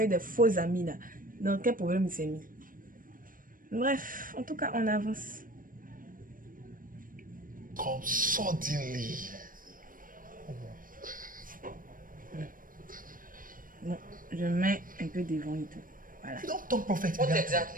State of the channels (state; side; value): late; left; 0.40 ms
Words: des faux amis là. Dans quel problème il s'est mis. Bref, en tout cas, on avance. Come suddenly. Bon, je mets un peu devant et tout. Voilà. You don't talk prophet. What